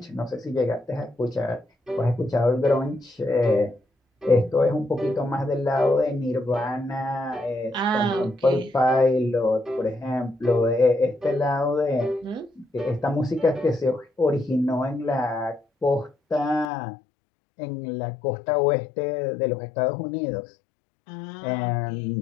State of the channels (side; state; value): right; drops out; at 16.7 s